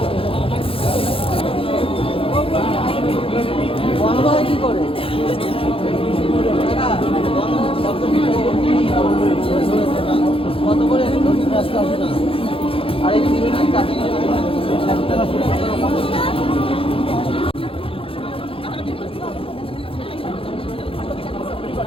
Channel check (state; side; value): late; right; 0.27 ms